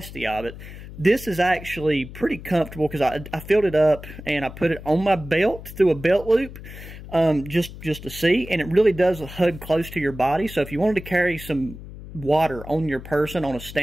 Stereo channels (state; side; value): noise; left; hum, 14 dB below the sound